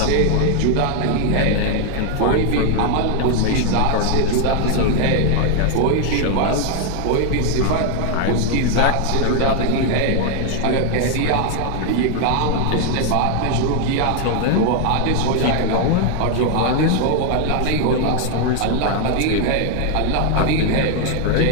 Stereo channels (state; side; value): different; both; correlation 0.00